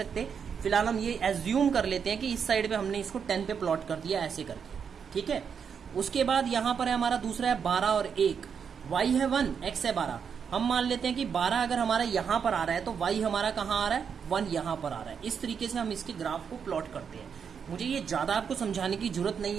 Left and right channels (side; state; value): left; quieter; 6.9 dB